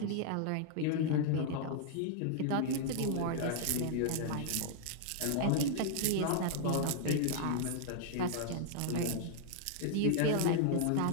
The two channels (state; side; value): different; both; correlation -0.01